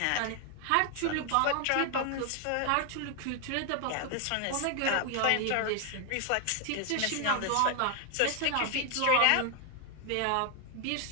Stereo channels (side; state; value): both; different; correlation 0.00